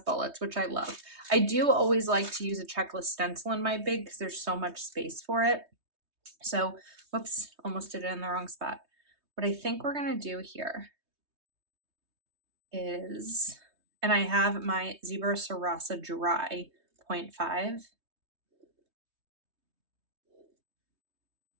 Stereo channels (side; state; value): left; late; 3.2 ms